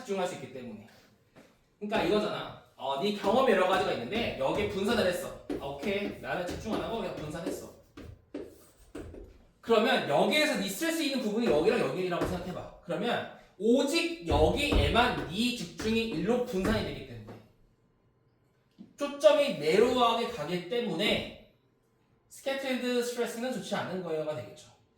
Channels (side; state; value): both; identical; correlation 1.00